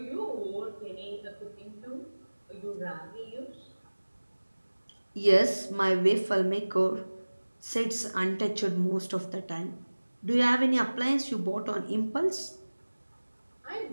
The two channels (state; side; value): inverted; both; correlation -1.00